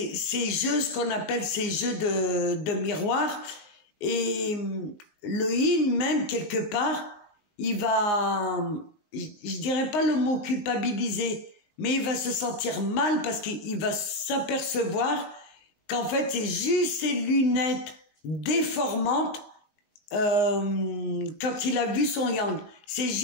jeux, ce qu'on appelle ces jeux de miroir. Et le yin, même quelque part, il va, je dirais pas le mot culpabiliser, mais il va se sentir mal parce qu'il va s'apercevoir qu'en fait c'est juste ces lunettes déformantes. Quand il a vu son yang, c'est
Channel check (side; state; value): right; late; 19 ms